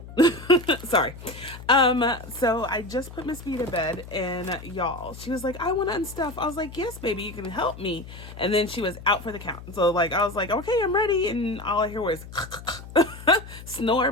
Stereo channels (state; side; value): noise; left; hum, 14 dB below the sound